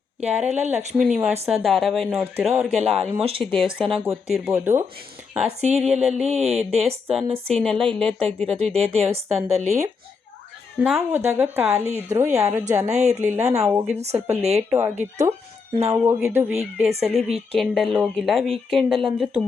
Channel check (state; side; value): quieter; right; 5.1 dB